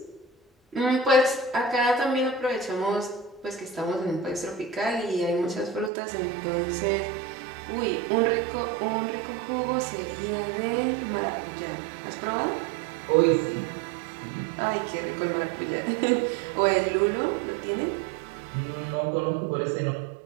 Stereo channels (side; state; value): left; drops out; at 5.9 s